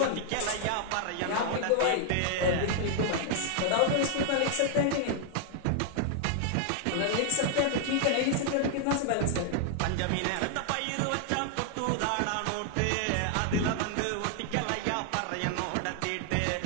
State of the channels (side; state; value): both; different; correlation 0.00